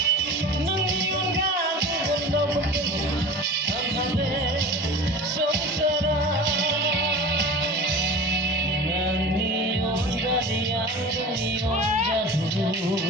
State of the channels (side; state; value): both; normal; correlation 0.35